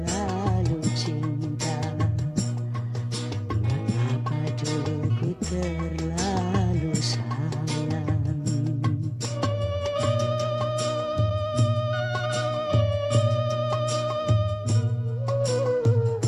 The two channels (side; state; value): both; identical; correlation 1.00